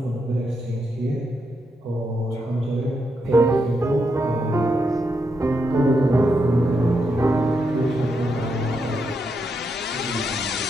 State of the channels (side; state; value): both; normal; correlation 0.82